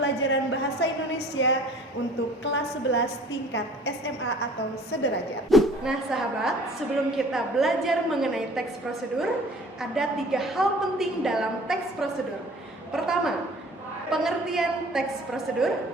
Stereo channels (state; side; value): normal; both; correlation 0.50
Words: Bahasa Indonesia untuk kelas 11 tingkat SMA atau sederajat. Nah sahabat, sebelum kita belajar mengenai teks prosedur, ada 3 hal penting dalam teks prosedur. Pertama, pengertian teks prosedur.